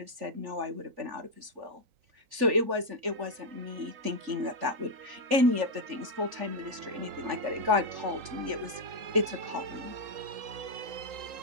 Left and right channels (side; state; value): left; late; 3.4 ms